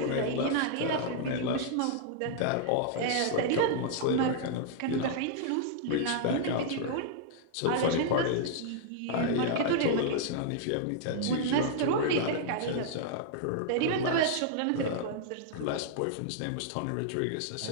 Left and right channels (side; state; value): both; different; correlation -0.01